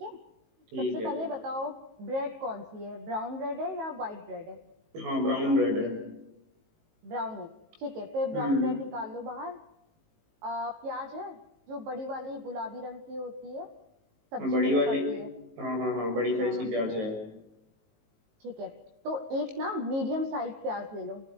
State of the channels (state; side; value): late; left; 19 ms